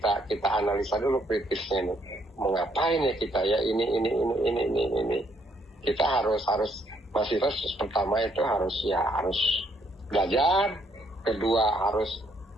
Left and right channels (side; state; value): both; normal; correlation 0.70